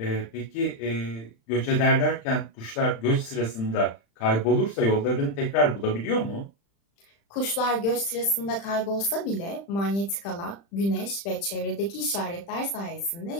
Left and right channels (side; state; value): right; late; 35 ms